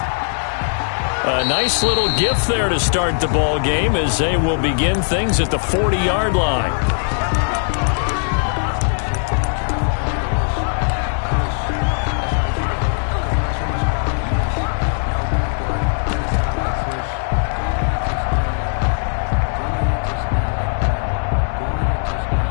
A nice little gift there to start the ball game as they will begin things at the 40-yard line.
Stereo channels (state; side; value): silent; right; digital silence